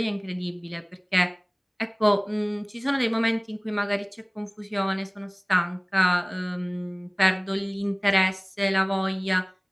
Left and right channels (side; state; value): both; identical; correlation 1.00